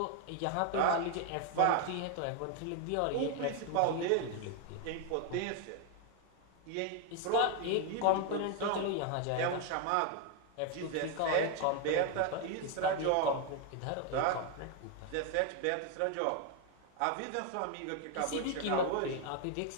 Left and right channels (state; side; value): different; both; correlation 0.01